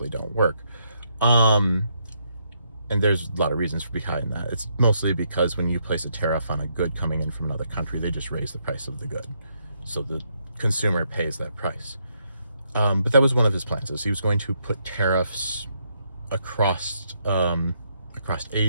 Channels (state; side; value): inverted; both; correlation -0.76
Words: don't work. And there's a lot of reasons behind that. It's mostly because when you place a tariff on a good coming in from another country, they just raise the price of the good. So the consumer pays that price. But that was one of his plans, is he was going to put tariffs across